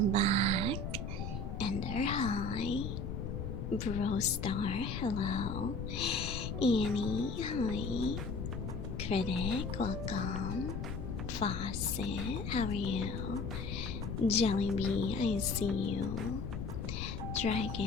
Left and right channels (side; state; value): left; noise; rumble, 4 dB below the sound